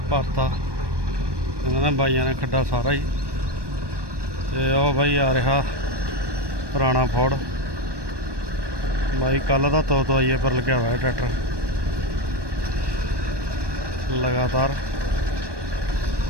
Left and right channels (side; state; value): left; late; 1.2 ms